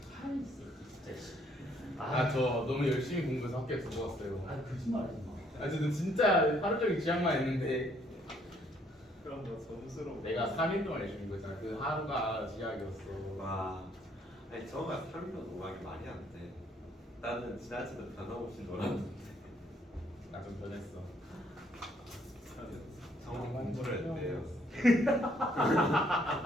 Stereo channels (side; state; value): both; normal; correlation 0.66